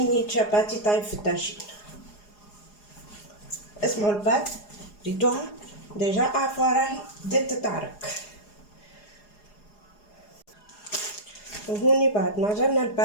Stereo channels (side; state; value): right; late; 4.8 ms